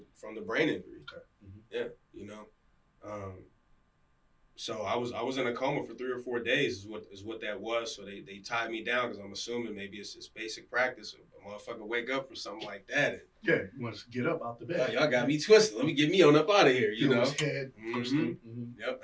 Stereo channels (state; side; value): identical; both; correlation 1.00